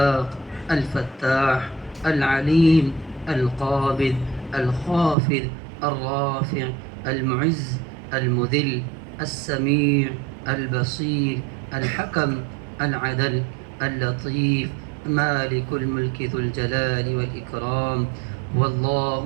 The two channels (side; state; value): left; drops out; at 5.2 s